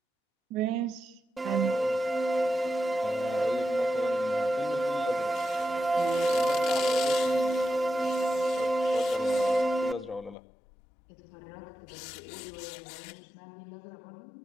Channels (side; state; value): right; drops out; at 10.4 s